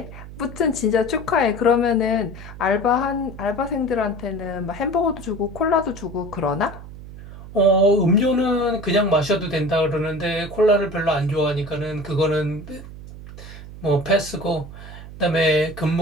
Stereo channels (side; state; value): right; noise; hum, 14 dB below the sound